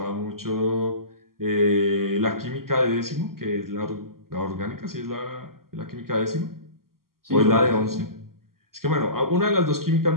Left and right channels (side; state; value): left; late; 0.92 ms